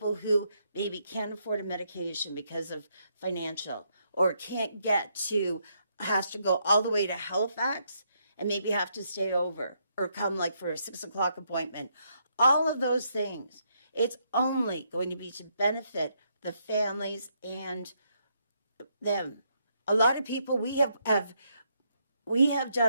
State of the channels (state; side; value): inverted; both; correlation -0.76